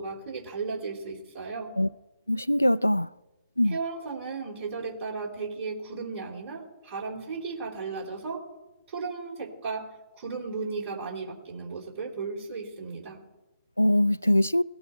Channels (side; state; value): both; inverted; correlation -0.89